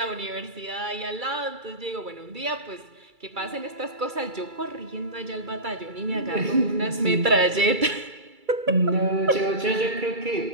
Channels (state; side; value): late; left; 2.3 ms